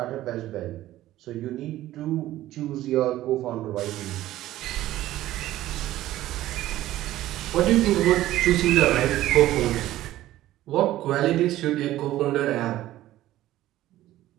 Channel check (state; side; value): quieter; left; 14.8 dB